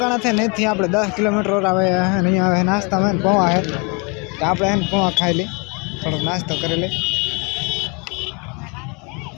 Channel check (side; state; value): right; quieter; 31.5 dB